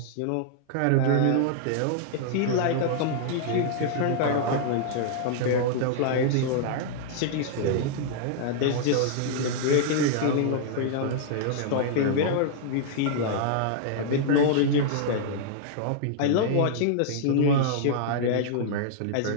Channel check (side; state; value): both; different; correlation -0.01